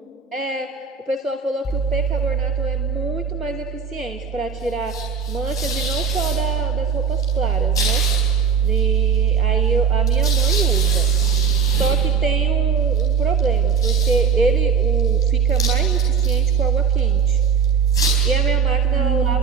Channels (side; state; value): left; quieter; 6.1 dB